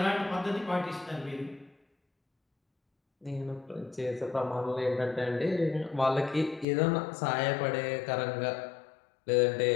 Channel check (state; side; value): drops out; right; at 6.7 s